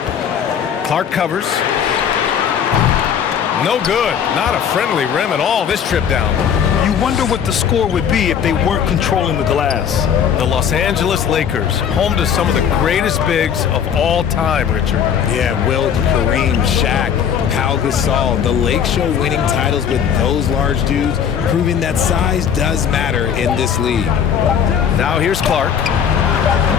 Clark covers. No good. Not a friendly rim at all this trip down. You wonder what the score would be if they weren't controlling the glass. The Los Angeles Lakers, home to some of the greatest bigs of all time, Richard. Yeah, Wilt, Kareem, Shaq, Pau Gasol. The Lake Show winning titles with those large dudes, proving that size does matter in this league. Now here's Clark.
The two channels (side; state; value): right; quieter; 8.0 dB